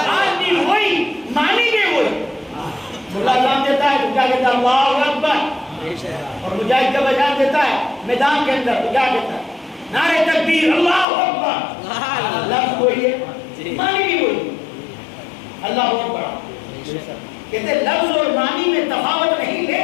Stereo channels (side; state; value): right; drops out; at 11.1 s